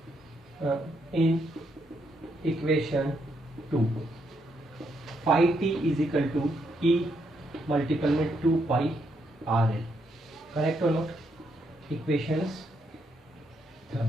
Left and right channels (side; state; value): both; normal; correlation 0.77